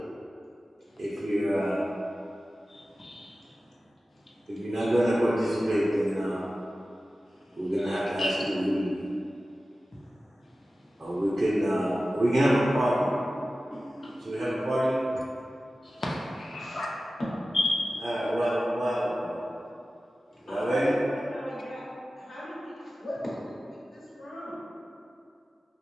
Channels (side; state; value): both; normal; correlation 0.95